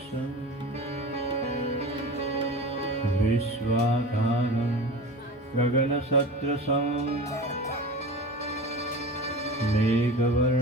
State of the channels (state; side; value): normal; both; correlation 0.33